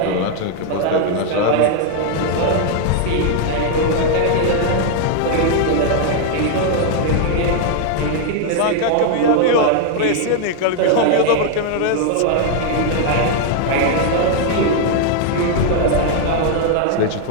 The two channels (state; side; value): different; both; correlation 0.00